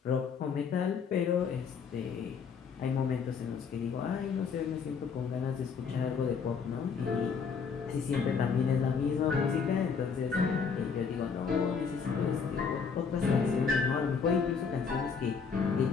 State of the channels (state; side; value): quieter; right; 5.9 dB